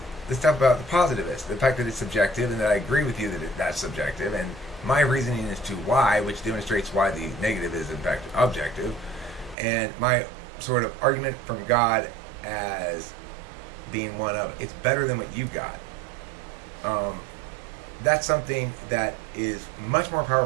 stuff about the positivist, the fact that it's subjective and that I agree with you that that's subjective, and my reasoning as to why, which demonstrates why the negative is in fact objective, and my sort of argument from God as being one of, it's better than what you got. That's something that is much more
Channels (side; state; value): left; drops out; at 9.6 s